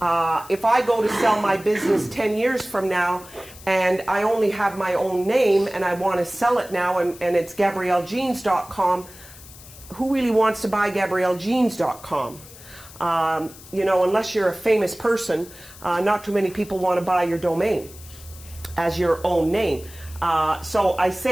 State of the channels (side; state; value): left; noise; hiss, 19 dB below the sound